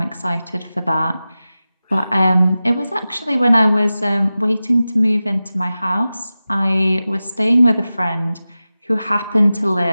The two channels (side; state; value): both; inverted; correlation -0.95